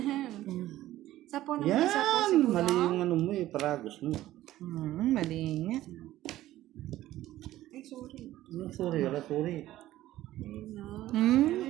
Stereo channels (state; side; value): quieter; left; 14.7 dB